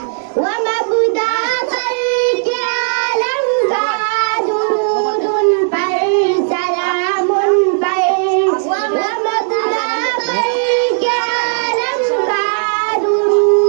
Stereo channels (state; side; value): silent; left; digital silence